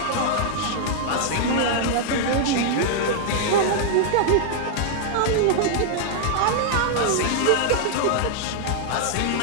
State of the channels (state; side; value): different; both; correlation -0.01